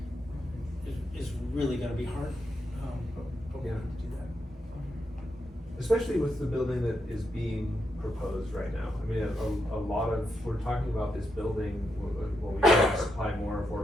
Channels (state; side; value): normal; both; correlation 0.83